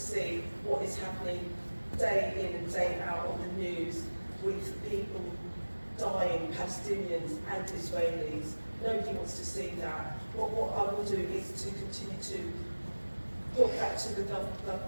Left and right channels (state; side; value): inverted; both; correlation -1.00